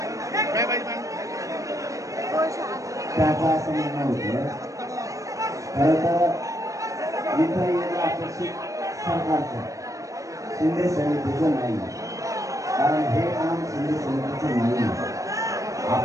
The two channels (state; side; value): late; left; 0.16 ms